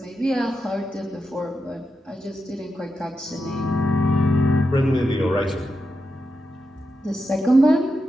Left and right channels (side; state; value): both; normal; correlation 0.87